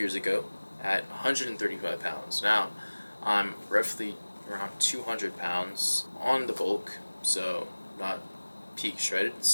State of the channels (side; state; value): both; inverted; correlation -1.00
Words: ago at 135 pounds. Now, I'm roughly around 200 pounds on the bulk, so not peak shredded,